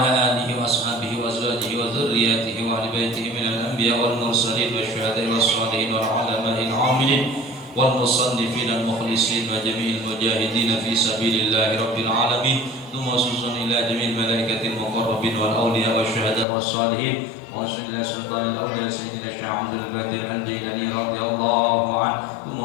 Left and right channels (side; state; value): right; drops out; at 16.4 s